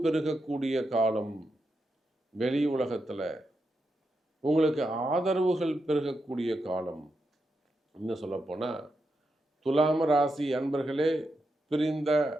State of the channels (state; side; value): normal; both; correlation 0.85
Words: பெருகக்கூடிய காலம். வெளி உலகத்தில் உங்களுக்கு ஆதரவுகள் பெருகக்கூடிய காலம். இன்னும் சொல்லப்போனால் துலாம் ராசி அன்பர்களே, பிரிந்த